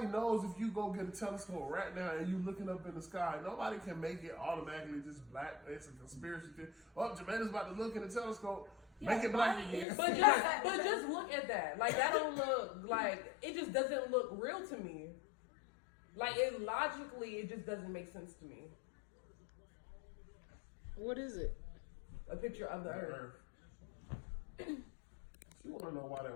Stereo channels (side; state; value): right; drops out; at 9.9 s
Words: knows if you go get a telescope right now and you looking up in the sky. Nobody can make it automatically just black. It's a conspiracy theory. Oh, Jermaine's about to look in the telescope. Make it black again. But just look at that. That don't look it just doesn't look real to me. Logically, it just doesn't make sense to me. What is it? A picture of the Earth. You want to know why